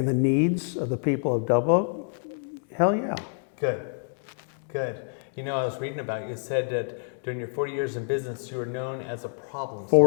the needs of the people of Double Oak? Hell yeah. Good, good. You know, I was reading about you, it said that During your 40 years in business, you were known as a problem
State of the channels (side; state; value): right; silent; 59 dB below the other